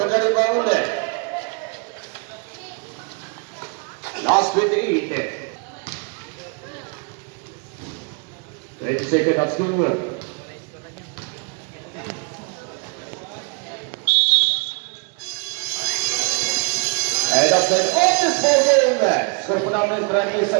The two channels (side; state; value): left; quieter; 34.4 dB